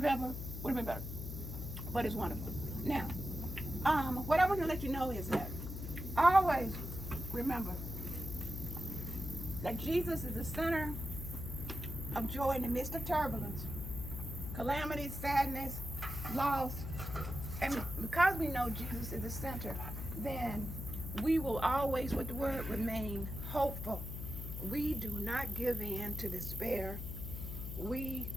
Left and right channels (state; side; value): noise; left; hum, 6 dB below the sound